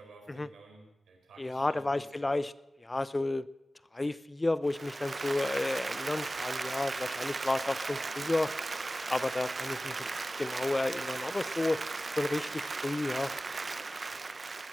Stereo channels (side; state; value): both; normal; correlation 0.96